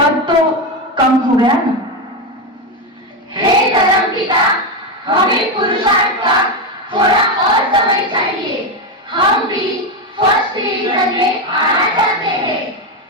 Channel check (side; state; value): both; normal; correlation 0.11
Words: तो कम हो गया ना? हे धर्मपिता, हमें पुरुषार्थ का थोड़ा और समय चाहिए। हम भी फर्स्ट डिवीजन में आना चाहते हैं।